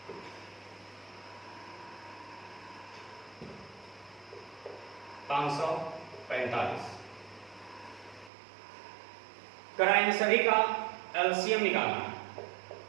करा इन सभी का एलसीएम निकालना है।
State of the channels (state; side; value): drops out; left; at 8.3 s